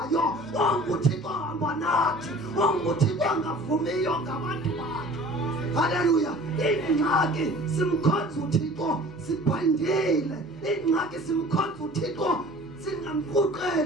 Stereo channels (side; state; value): both; normal; correlation 0.45